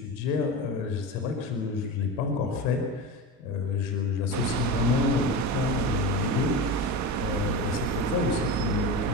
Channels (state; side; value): normal; both; correlation 0.24